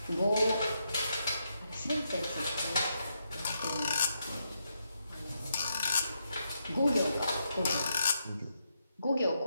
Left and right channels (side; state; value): both; inverted; correlation -0.81